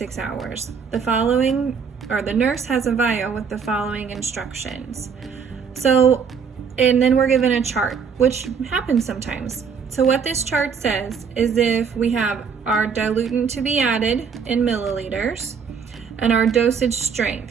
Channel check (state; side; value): quieter; left; 6.2 dB